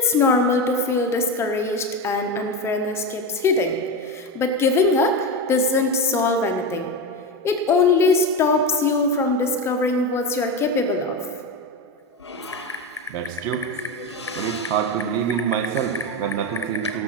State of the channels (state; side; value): normal; both; correlation 0.17